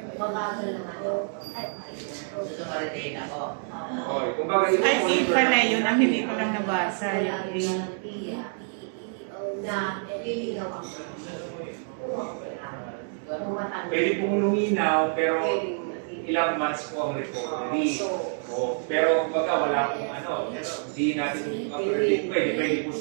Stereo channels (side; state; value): left; silent; digital silence